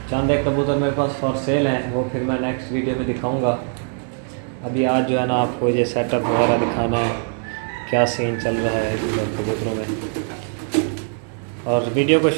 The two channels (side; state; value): left; silent; 55 dB below the other